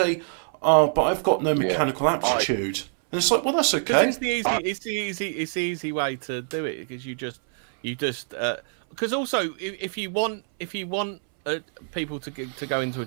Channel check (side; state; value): left; silent; 62 dB below the other